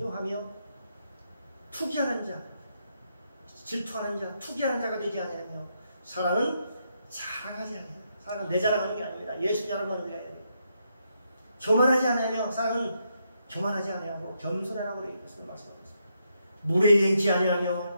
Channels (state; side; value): inverted; both; correlation -0.79